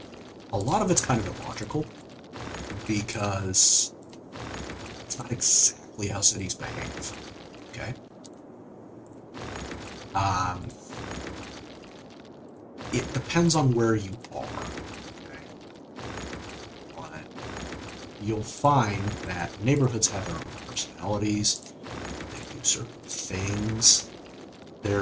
a lot of it's kind of illogical, because it's not exactly how cities behave, okay? It depends on where you are, okay? But you'll find that neighborhoods have their own personalities, they do certain things.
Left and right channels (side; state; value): both; identical; correlation 1.00